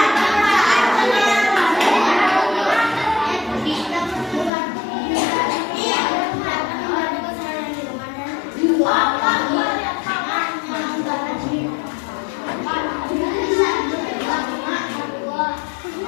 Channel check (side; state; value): right; drops out; at 4.5 s